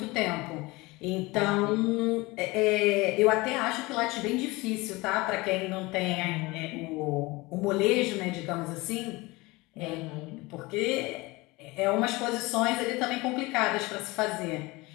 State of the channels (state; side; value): quieter; right; 22.7 dB